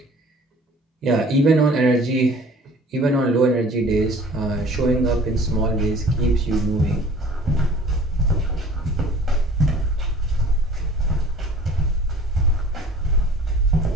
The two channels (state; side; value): normal; both; correlation 0.49